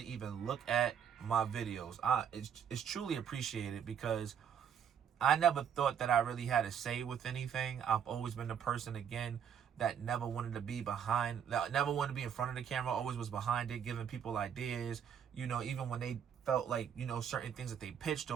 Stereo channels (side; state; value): left; quieter; 8.2 dB